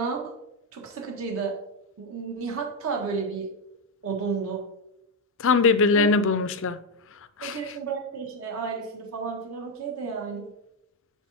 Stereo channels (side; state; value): both; normal; correlation 0.05